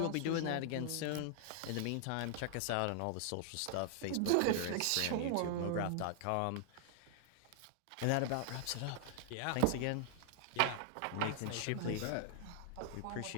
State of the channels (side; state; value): both; different; correlation -0.01